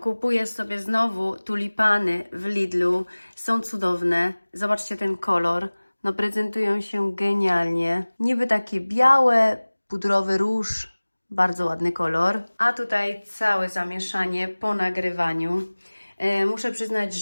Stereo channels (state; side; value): inverted; both; correlation -1.00